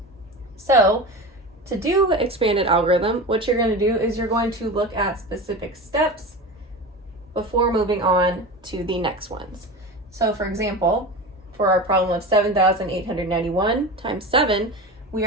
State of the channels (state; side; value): normal; both; correlation 0.28